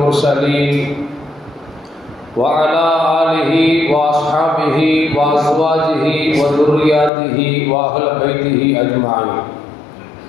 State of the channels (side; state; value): right; drops out; at 7.1 s